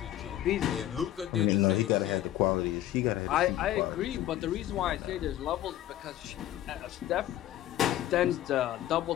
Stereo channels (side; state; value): right; quieter; 13.2 dB